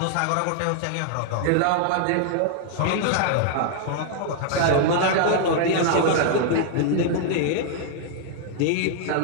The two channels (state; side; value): different; both; correlation 0.00